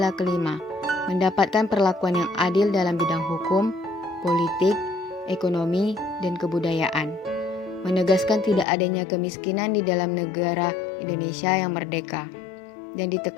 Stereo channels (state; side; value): drops out; right; at 8.7 s